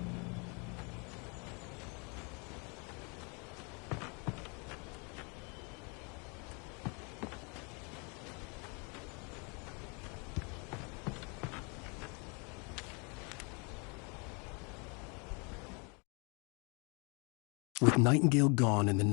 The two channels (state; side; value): quieter; right; 33.1 dB